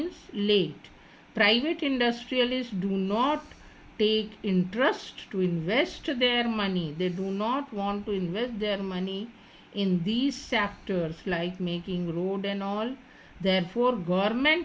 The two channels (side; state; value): both; identical; correlation 1.00